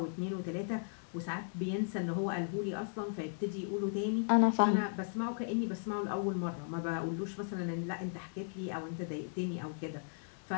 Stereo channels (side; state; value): right; silent; digital silence